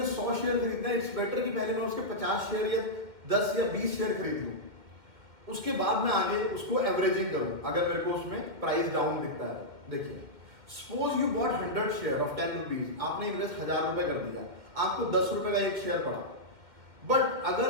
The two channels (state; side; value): late; left; 2.1 ms